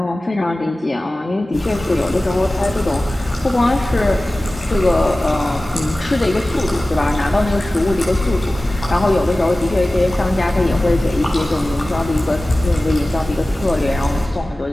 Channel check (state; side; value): normal; both; correlation 0.97